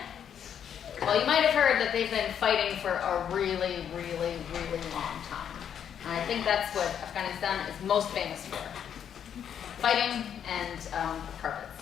Well, you might have heard that they've been fighting for a really, really, really long time. And I think that's what Afghanistan is most famous for. Fighting and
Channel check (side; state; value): right; quieter; 8.7 dB